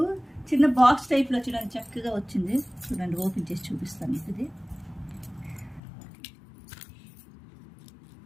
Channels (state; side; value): drops out; right; at 5.8 s